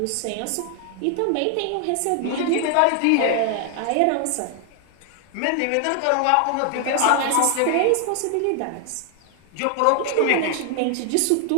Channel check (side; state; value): both; different; correlation 0.00